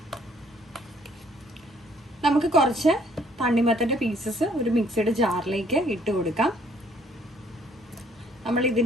നമുക്ക് കുറച്ച് തണ്ണിമത്തൻ്റെ പീസസ് ഒരു മിക്സിയുടെ ജാറിലേക്ക് ഇട്ട് കൊടുക്കാം. നമ്മൾ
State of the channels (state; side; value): normal; both; correlation 0.63